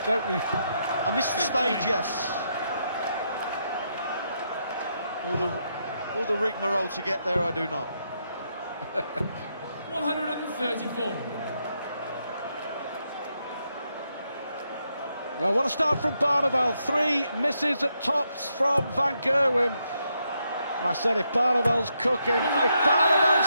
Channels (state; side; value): inverted; both; correlation -0.80